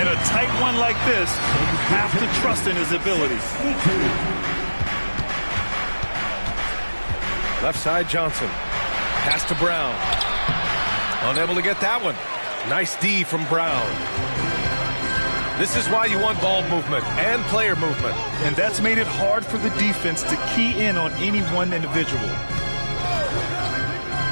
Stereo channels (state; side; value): inverted; both; correlation -1.00